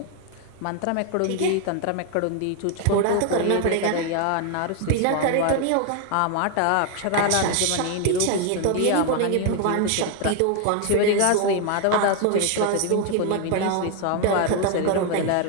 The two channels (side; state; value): both; different; correlation 0.01